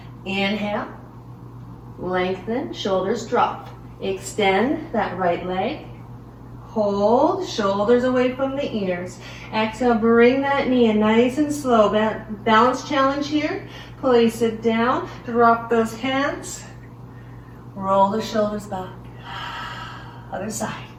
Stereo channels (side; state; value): both; identical; correlation 1.00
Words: Inhale, lengthen, shoulders drop. Extend that right leg. Hold, shoulders away from the ears. Exhale, bring that knee in nice and slow. Balance challenge here. Place it down, drop those hands. Roll the shoulders back. Other side.